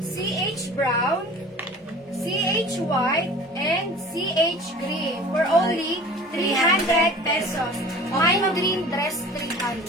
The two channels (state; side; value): normal; both; correlation 0.42